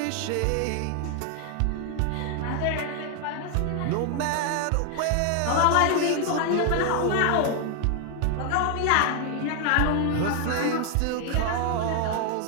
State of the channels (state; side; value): different; both; correlation 0.00